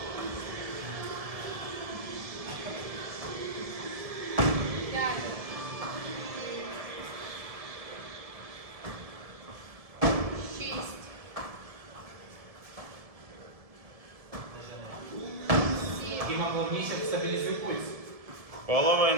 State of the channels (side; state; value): left; late; 1.7 ms